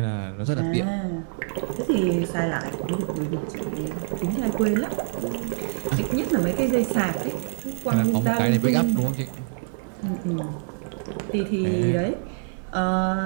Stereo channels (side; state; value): left; silent; digital silence